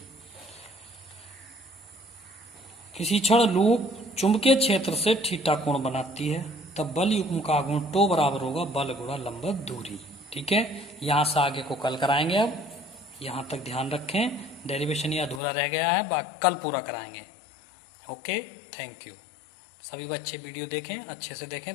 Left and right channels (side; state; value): right; drops out; at 15.4 s